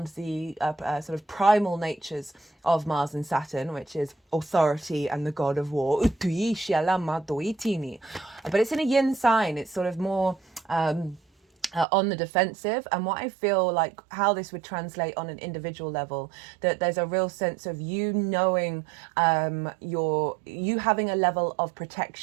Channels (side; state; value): left; drops out; at 11.9 s